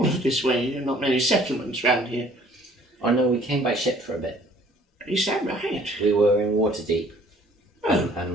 of this way. There are not many settlements round here. Oh no, we came by ship for a bit. Is that right? We were in Waterdeep, Oh. and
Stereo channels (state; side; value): normal; both; correlation 0.56